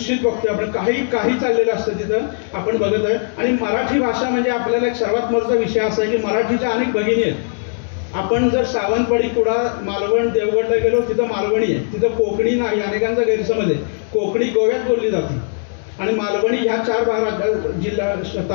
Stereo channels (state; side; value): silent; right; digital silence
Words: बघतोय आपण. काही चाललेलं असतं तिथं आपण बघत आहे. आणि मराठी भाषा म्हणजे आपल्याला एक सर्वात महत्त्वाचा विषय असा आहे की मराठीच्या अनेक भगिनी आहेत. आपण जर सावंतवाडी, कुडाळ, मालवण, देवगडला गेलो तिथं मालवणी आहे, तिथं कोकणी नाही. अनेकांचा गैरसमज आहे. कोकणी गोव्यात बोलली जाते आणि मालवणी ह्या 4 जिल्हा